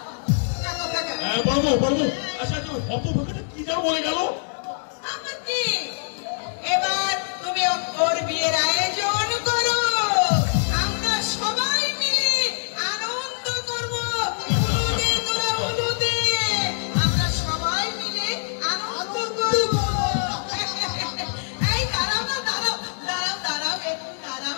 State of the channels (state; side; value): silent; right; digital silence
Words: হ্যাঁ বলবো বলবো। আচ্ছা, তো হত ভাগে কি যেন বলে গেল? আমার কি এবার তুমি ওর বিয়ের আয়োজন করো, আমরা সবাই মিলে আনন্দ করবো। আমরা সবাই মিলে আনন্দ করবো। এই দাঁড়াও না, দাঁড়াও দাঁড়াও দাঁড়াও একটু দাঁড়াও।